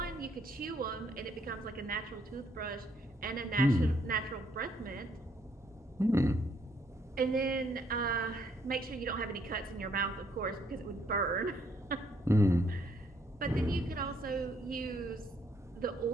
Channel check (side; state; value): both; normal; correlation 0.69